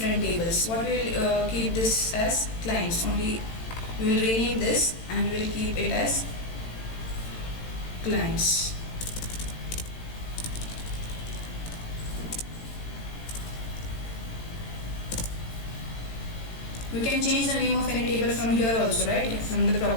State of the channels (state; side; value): late; right; 18 ms